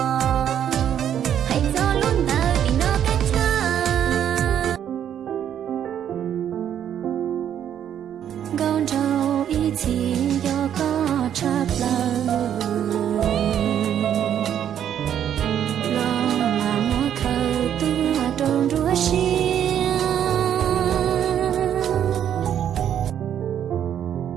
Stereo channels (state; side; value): quieter; left; 9.7 dB